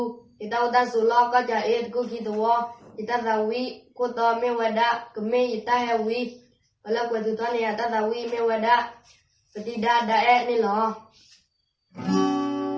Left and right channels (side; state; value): both; identical; correlation 1.00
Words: ita uta sulo ka ja et ku kitwo ita dawi ko to me wada keme ita hewi ala bwedu to ne ata dawi me wada peti da e ni lo